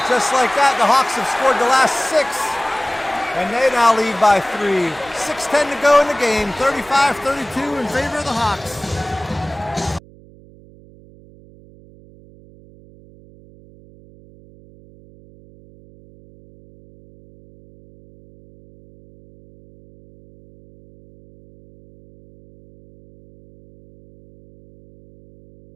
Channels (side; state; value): right; noise; hum, 24 dB below the sound